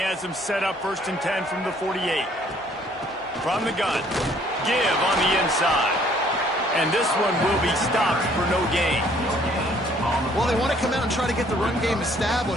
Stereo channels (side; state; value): both; normal; correlation 0.61